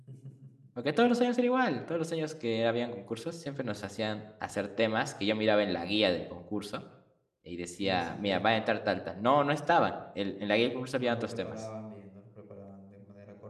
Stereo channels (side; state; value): both; identical; correlation 1.00